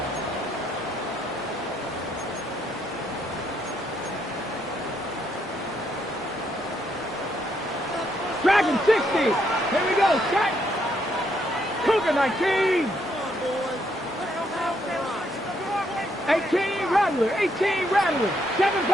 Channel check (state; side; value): normal; both; correlation 0.74